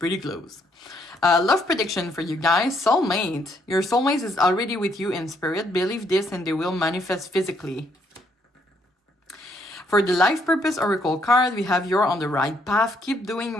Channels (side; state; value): both; normal; correlation 0.71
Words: close. Love prediction for you guys. Soulmate. Your soulmate is already with you in spirit. Believe this and they will manifest physically. For the life purpose oracle card, we have you're on the right path. Keep doing